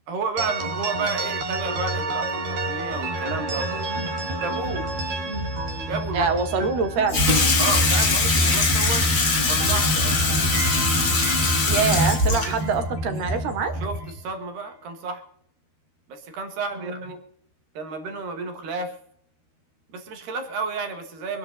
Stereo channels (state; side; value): late; left; 13 ms